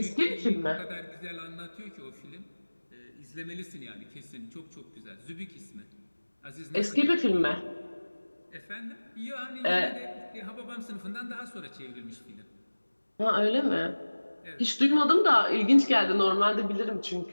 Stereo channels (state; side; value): inverted; both; correlation -1.00